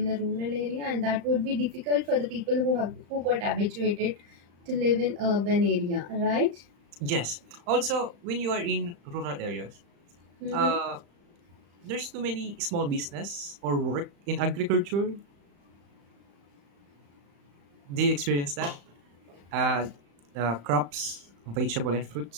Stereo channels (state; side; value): late; left; 35 ms